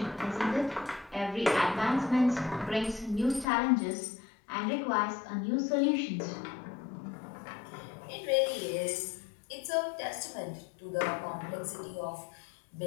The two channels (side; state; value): right; drops out; at 3.5 s